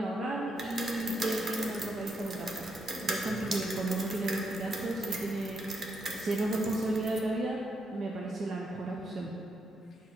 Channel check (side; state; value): both; normal; correlation 0.79